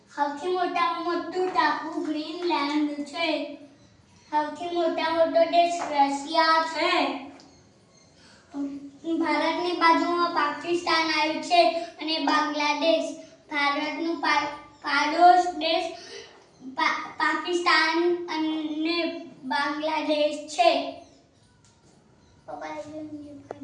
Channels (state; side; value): identical; both; correlation 1.00